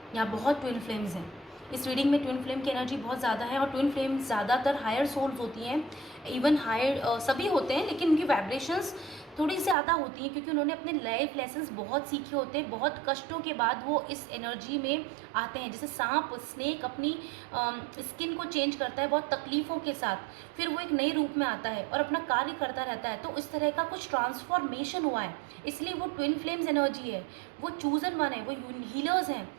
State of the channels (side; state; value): left; drops out; at 9.8 s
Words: यहाँ बहुत ट्विन फ्लेम्स हैं। इस रीडिंग में ट्विन फ्लेम की एनर्जी बहुत ज़्यादा है, और ट्विन फ्लेम ज़्यादातर हायर सोल्स होती हैं, इवन हायर सभी होते हैं, लेकिन उनकी वाइब्रेशंस थोड़ी ज़्यादा होती हैं, क्योंकि उन्होंने अपने लाइफ लेसन्स बहुत सीखे होते हैं। बहुत कष्टों के बाद वो इस एनर्जी में आते हैं। जैसे सांप, स्नेक अपनी स्किन को चेंज करता है बहुत तकलीफ़ों के साथ, फिर वो एक नए रूप में आता है और अपना कार्य करता रहता है। तो इस तरह का कुछ ट्रांसफॉर्मेशन हुआ है, इसलिए वो ट्विन फ्लेम्स एनर्जी है, वो चूजन वन है, वो हीलर्स हैं,